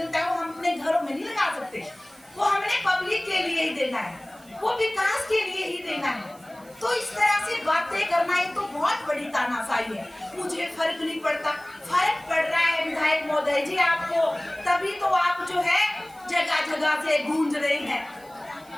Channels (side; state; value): right; noise; hiss, 26 dB below the sound